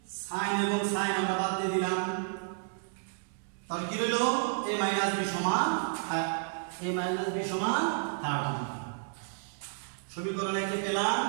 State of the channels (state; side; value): silent; left; 57 dB below the other